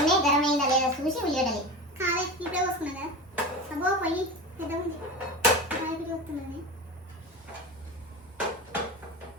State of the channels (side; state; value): both; normal; correlation 0.27